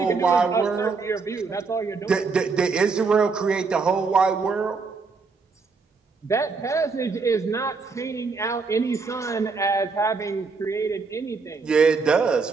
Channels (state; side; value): quieter; left; 4.6 dB